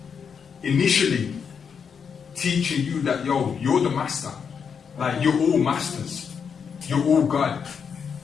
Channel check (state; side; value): quieter; right; 6.6 dB